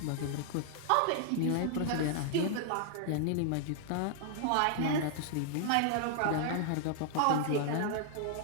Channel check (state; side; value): different; both; correlation -0.01